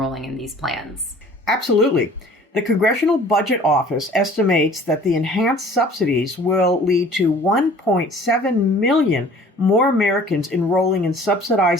in these plans. Absolutely. The Congressional Budget Office estimates that the enhanced subsidies will lead to 1.7 million more Americans enrolling in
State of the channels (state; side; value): normal; both; correlation 0.49